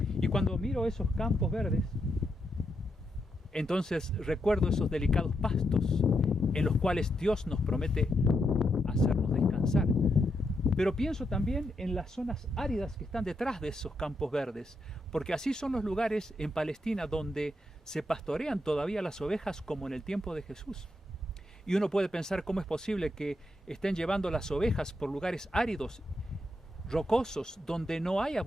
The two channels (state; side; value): normal; both; correlation 0.82